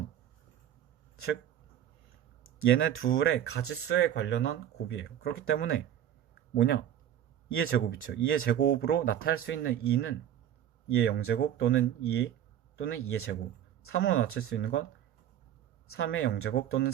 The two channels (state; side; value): quieter; left; 10.6 dB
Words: 즉 얘네 둘의 가짓수에 관련한 곱이에요. 그렇기 때문에 뭐냐? 2의 제곱이죠. 2의 제곱으로 나타낼 수 있는 2는 2의 0제곱 또는 2 또는 2의 제곱, 3으로 낮출 수 있는 건 3의 0제곱 또는